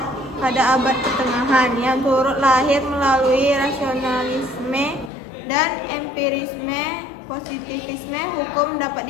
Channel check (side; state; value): right; drops out; at 5.1 s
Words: pada abad pertengahan, yang turut lahir melalui rasionalisme dan empirisme. Positivisme hukum